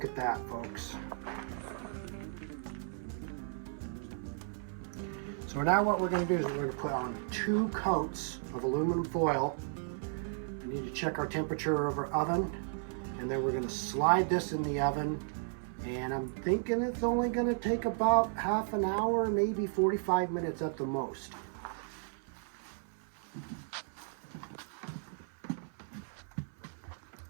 at that, folks. So now what we're going to do is we're going to put on 2 coats of aluminum foil. We need to check our temperature of our oven. And then we're going to slide this in the oven, and I'm thinking it's only going to take about half an hour, maybe 45 minutes at the most.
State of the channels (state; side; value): silent; left; 55 dB below the other